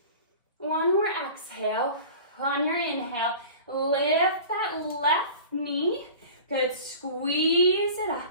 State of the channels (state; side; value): inverted; both; correlation -0.40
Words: One more exhale. On your inhale, lift that left knee. Good. Squeeze it